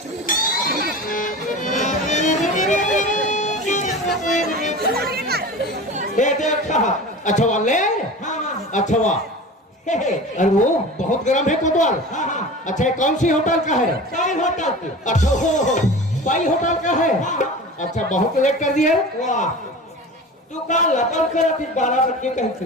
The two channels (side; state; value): both; normal; correlation 0.34